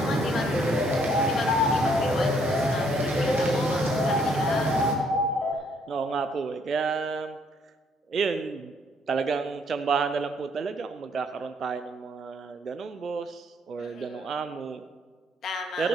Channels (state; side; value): normal; both; correlation 0.67